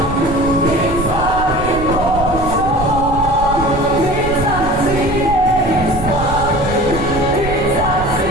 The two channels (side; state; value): right; noise; rumble, 7 dB below the sound